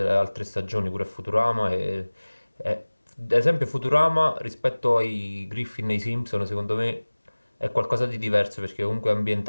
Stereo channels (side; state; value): both; inverted; correlation -1.00